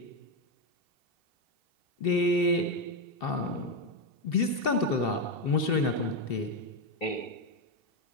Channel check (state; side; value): late; right; 2.7 ms